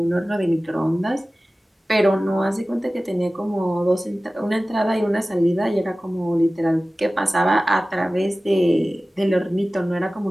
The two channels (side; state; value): both; normal; correlation 0.97